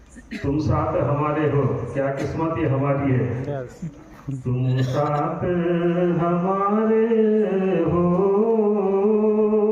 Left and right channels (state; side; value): identical; both; correlation 1.00